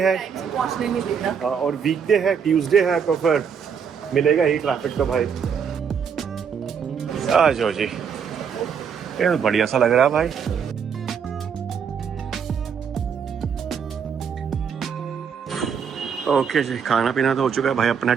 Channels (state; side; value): quieter; left; 7.0 dB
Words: टाइम से पहुंचने नहीं देना। और वीकडे है, ट्यूसडे है, तो फिर मिलेगा ही ट्रैफिक। तो भाई आ जाओ जी, ये तो बढ़िया सा लग रहा है भाई। ओके जी, खाना पीना तो हो चुका है भाई अपना